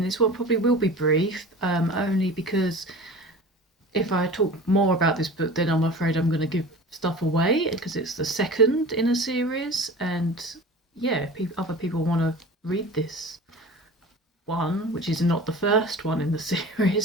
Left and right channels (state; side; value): normal; both; correlation 0.37